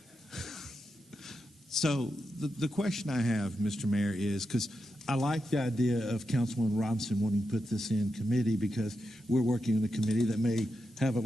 So the question I have, Mr. Mayor, is because I like the idea of Councilman Robinson wanting to put this in committee, because we're working in a committee that may have a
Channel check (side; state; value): both; normal; correlation 0.87